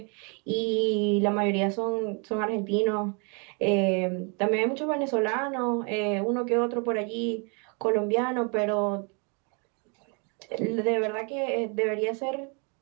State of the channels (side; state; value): left; quieter; 35.4 dB